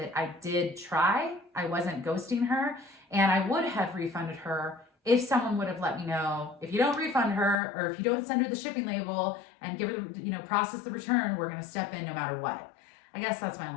I did try. I wasn't ghosting her, and I would have refunded her if someone would have let me know, if you don't refund her, or if you don't send her the shipping label and give her, process the return, we're going to step in no matter what. I guess that's my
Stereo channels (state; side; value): drops out; right; at 7.6 s